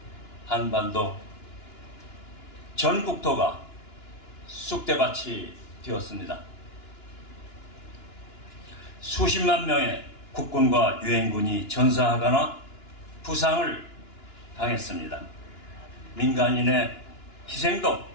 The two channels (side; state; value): right; late; 2.9 ms